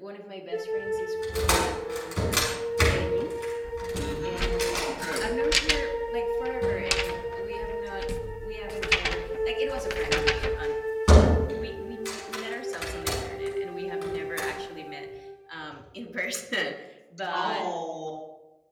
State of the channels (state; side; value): identical; both; correlation 1.00